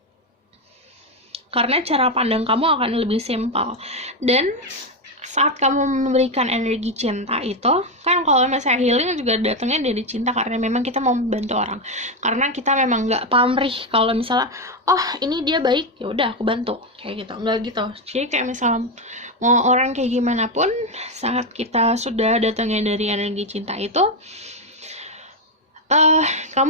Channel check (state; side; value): normal; both; correlation 0.07